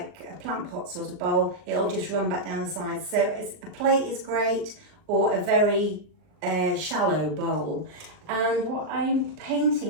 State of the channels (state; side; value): late; left; 39 ms